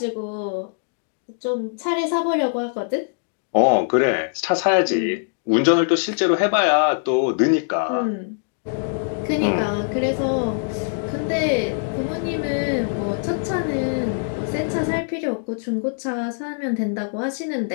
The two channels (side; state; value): right; silent; digital silence